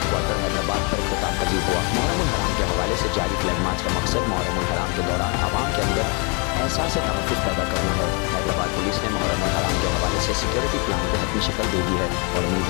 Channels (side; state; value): right; quieter; 34.2 dB